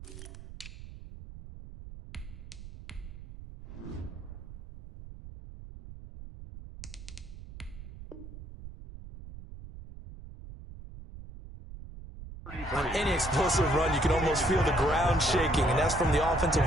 On any explosive run, you can almost feel the ground shaking, and that's from the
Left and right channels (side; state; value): right; noise; rumble, 14 dB below the sound